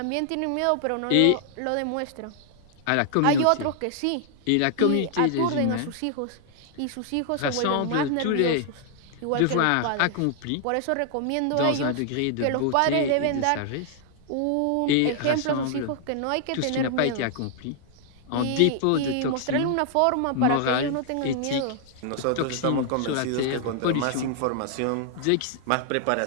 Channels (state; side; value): different; both; correlation 0.00